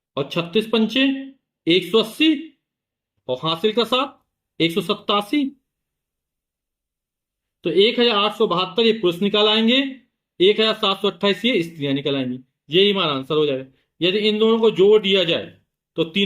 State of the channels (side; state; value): both; identical; correlation 1.00